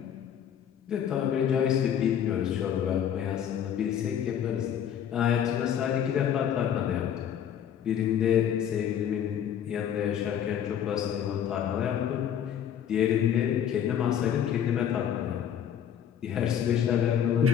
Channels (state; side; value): quieter; right; 9.3 dB